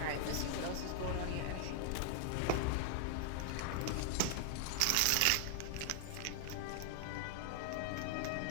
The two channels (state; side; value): different; both; correlation 0.00